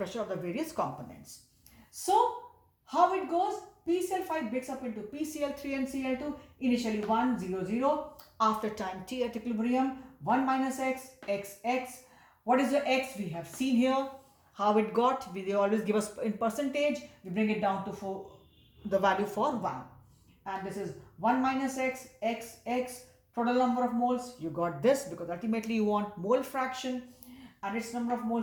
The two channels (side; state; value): both; identical; correlation 1.00